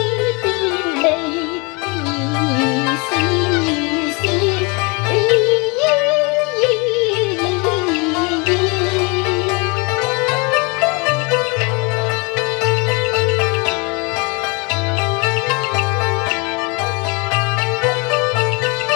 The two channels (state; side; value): quieter; right; 30.1 dB